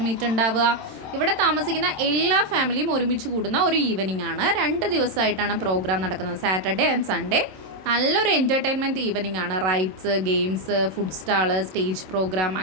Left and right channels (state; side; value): late; left; 27 ms